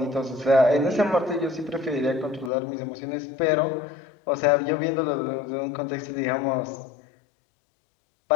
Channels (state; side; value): drops out; right; at 2.5 s